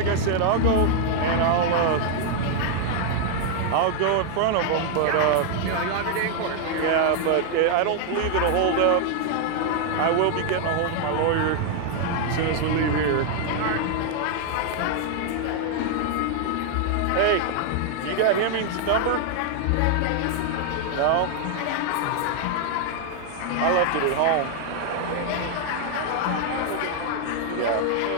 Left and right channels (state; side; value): different; both; correlation 0.00